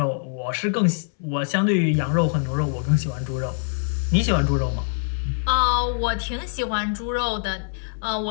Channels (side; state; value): right; silent; 63 dB below the other